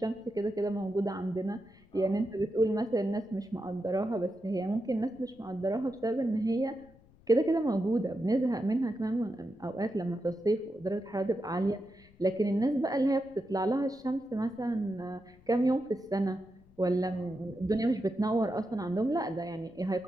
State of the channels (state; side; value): noise; left; rumble, 27 dB below the sound